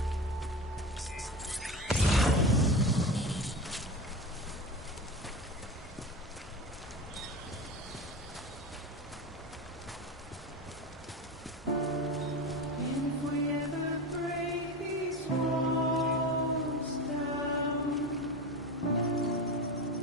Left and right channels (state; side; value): normal; both; correlation 0.25